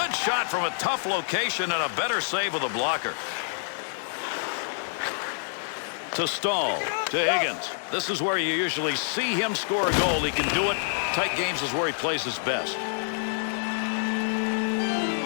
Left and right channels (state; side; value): silent; right; 60 dB below the other